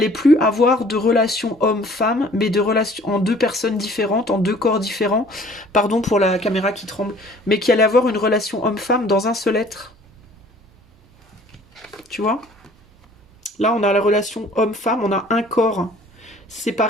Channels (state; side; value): normal; both; correlation 0.53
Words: plus avoir de relations homme-femme, mais de relations en deux personnes différentes, en deux corps différents, pardon pour la caméra qui tremble, mais qu'il allait avoir une relation homme-femme dans un seul être. Tu vois? Là, on a la relation homme-femme, on a un corps